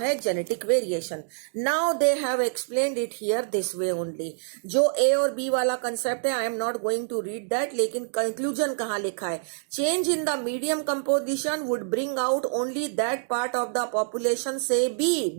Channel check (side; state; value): left; silent; digital silence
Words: genetic variation. Now they have explained it here this way only. जो ए और बी वाला कंसेप्ट है, I am not going to read that, लेकिन कंक्लूजन कहाँ लिखा है? Change in the medium composition would bring out only that part of the population से